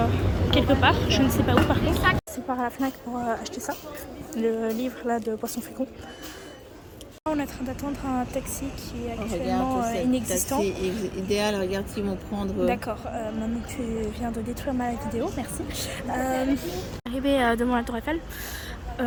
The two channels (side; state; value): both; identical; correlation 1.00